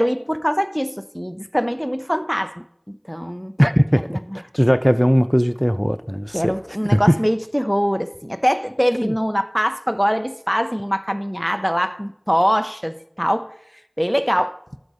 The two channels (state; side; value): identical; both; correlation 1.00